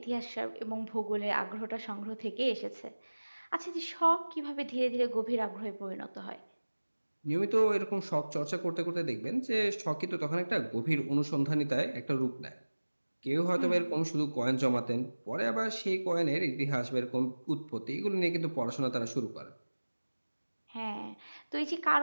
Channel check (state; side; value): inverted; both; correlation -1.00